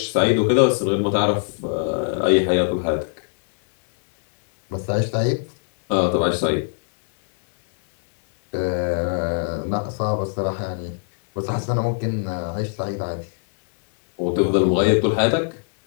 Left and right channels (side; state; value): right; silent; 64 dB below the other